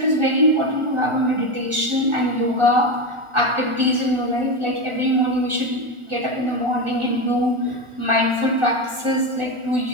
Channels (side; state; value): left; late; 1.4 ms